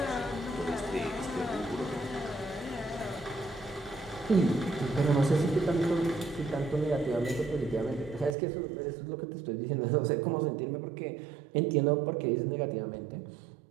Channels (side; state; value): left; drops out; at 8.3 s